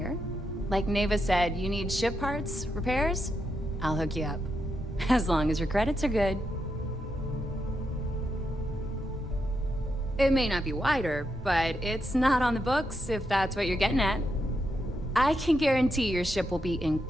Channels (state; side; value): normal; both; correlation 0.83